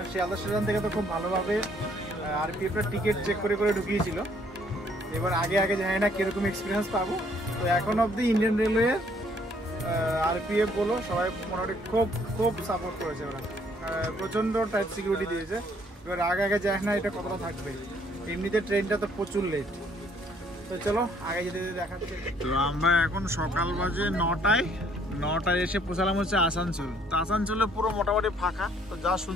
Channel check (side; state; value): both; normal; correlation 0.64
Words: শিয়ালদা স্টেশন থেকে তো খুব ভালোভাবে আরপিএফের টিকিট চেক করে ঢুকিয়েছিল। এবার আগে জানি না কীরকম এক্সপিরিয়েন্স পাবো। তো এখন অবধি ইন্ডিয়ান রেলওয়ে আরপিএফ বলো সবাই মোটামুটি খুব সাপোর্ট করেছে। ওরা প্রচণ্ড টাইট সিকিউরিটি দিয়েছে। এবার আগে যায় না এটা কতটা থাকবে। এমনিতে ট্রেনটা তো প্রচুর লেট। তো চলো আগে যেতে দেখাচ্ছে। তো আমরা এখন সকাল বাজে 9টায় এসে পৌঁছালাম হচ্ছে আসানসোল। তো আসানসোলে পুরো মোটামুটি ফাঁকা। তো যা